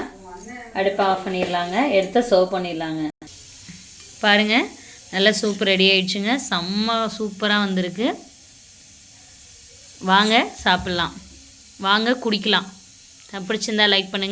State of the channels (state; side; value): identical; both; correlation 1.00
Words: அடுப்பை ஆஃப் பண்ணிடலாங்க. எடுத்து சர்வ் பண்ணிடலாங்க. பாருங்கள், நல்லா சூப் ரெடி ஆயிடுச்சுங்க. செம்ம சூப்பராக வந்திருக்கு. வாங்க சாப்பிட்லாம், வாங்க குடிக்கலாம். பிடிச்சிருந்தா லைக்